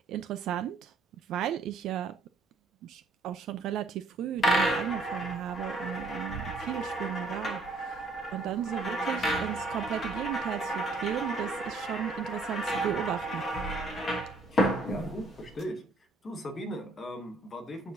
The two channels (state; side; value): quieter; left; 3.1 dB